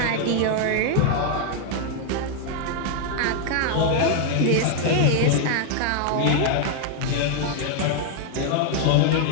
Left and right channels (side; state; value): both; different; correlation 0.00